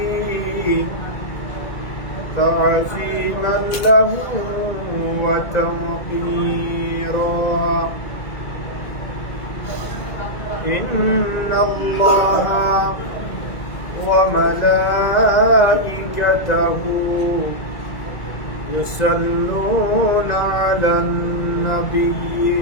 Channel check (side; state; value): right; late; 2.0 ms